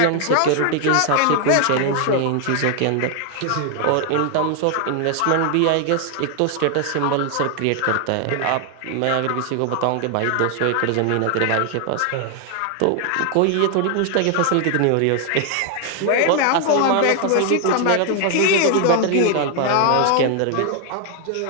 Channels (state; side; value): different; both; correlation 0.00